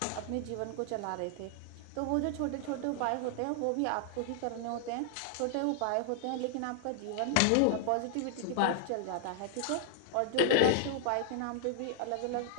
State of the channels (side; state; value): both; different; correlation -0.01